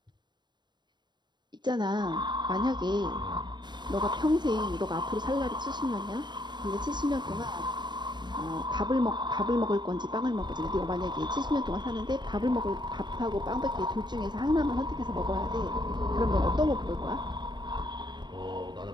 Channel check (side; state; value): left; late; 0.21 ms